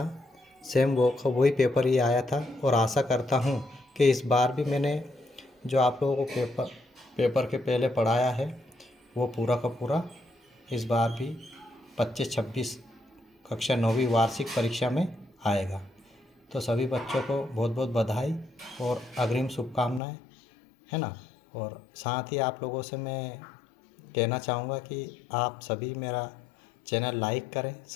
सेम वही पेपर ही आया था। और आशा करता हूँ कि इस बार भी मैंने जो आप लोगों को पेपर के पहले पढ़ाया है, वो पूरा का पूरा इस बार भी 25-26 कक्षा 9वीं वार्षिक परीक्षा में आएगा। तो सभी बच्चों को बहुत बहुत बधाई और अग्रिम शुभकामनाएं, है ना। और साथ ही आप लोगों से मैं कहना चाहूँगा कि आप सभी मेरा चैनल लाइक करें,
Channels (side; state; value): right; drops out; at 20.0 s